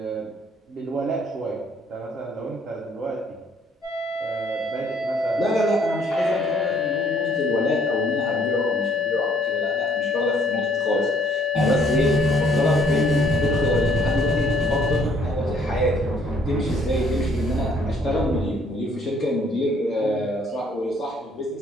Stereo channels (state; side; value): normal; both; correlation 0.63